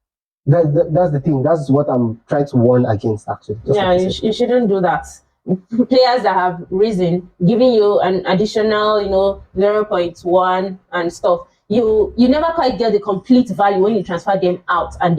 That's the thing. That's what I'm trying to warn against. Actually, just yeah, like you said. you shouldn't do that. Players that have risen, giving you an additional, 0.1 and stuff. You never quite get the complete value when you transfer them out and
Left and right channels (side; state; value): both; identical; correlation 1.00